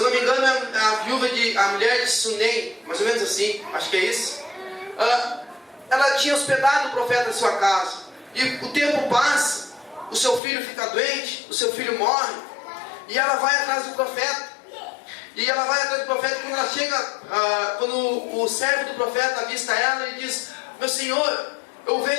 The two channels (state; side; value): drops out; right; at 10.4 s